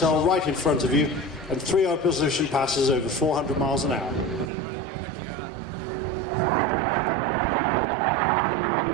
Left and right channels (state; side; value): drops out; left; at 4.5 s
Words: right in front of you, and 3 opposition passes over 400 miles an hour.